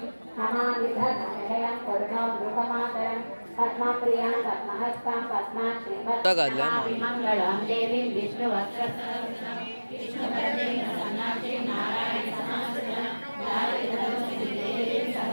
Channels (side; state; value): both; inverted; correlation -1.00